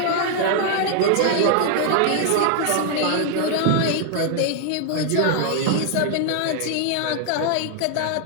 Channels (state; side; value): different; both; correlation 0.00